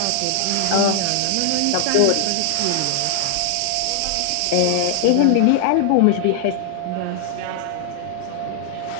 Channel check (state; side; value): different; both; correlation 0.00